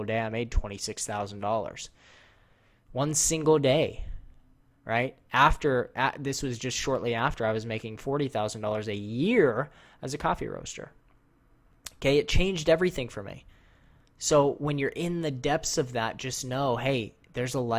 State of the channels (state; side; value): identical; both; correlation 1.00